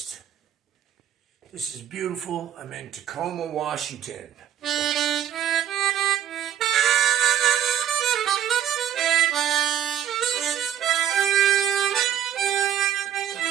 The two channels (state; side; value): quieter; left; 10.1 dB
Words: is beautiful. I'm in Tacoma, Washington.